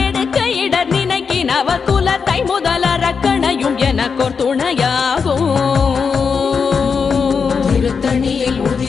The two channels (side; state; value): right; quieter; 5.7 dB